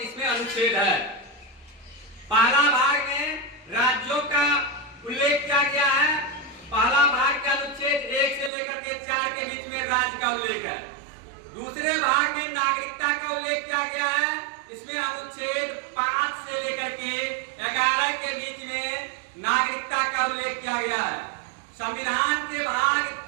इसमें अनुच्छेद है। पहला भाग में राज्यों का उल्लेख किया गया है। पहला भाग का अनुच्छेद 1 से लेकर के 4 के बीच में राज्य का उल्लेख है। दूसरे भाग में नागरिकता का उल्लेख किया गया है। इसमें अनुच्छेद 5 से लेकर के 11 के बीच में नागरिकता का उल्लेख किया गया है। संविधान के भाग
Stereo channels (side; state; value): left; drops out; at 8.5 s